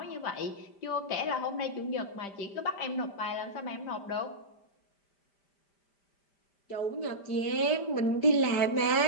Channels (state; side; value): late; right; 5.0 ms